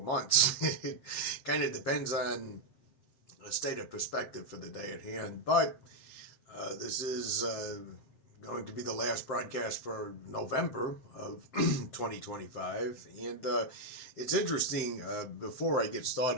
months. It kind of depends on a state of perspective for the day at hand. But this is going to be the last broadcast for November of 2025. And it's interesting, before I get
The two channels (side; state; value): right; late; 7.6 ms